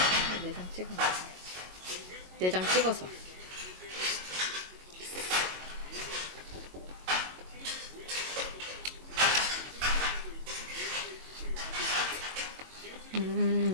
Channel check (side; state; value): left; late; 22 ms